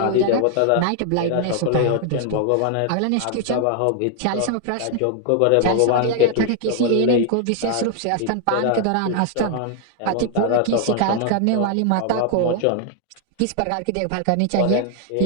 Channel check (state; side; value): different; both; correlation 0.00